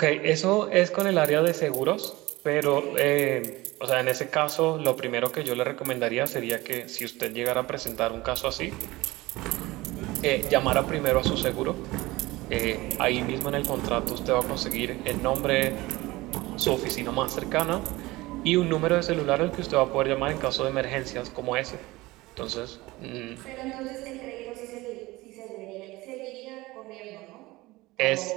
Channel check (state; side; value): quieter; left; 20.1 dB